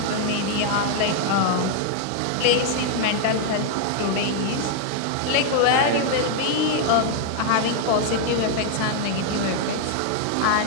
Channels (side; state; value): both; different; correlation 0.00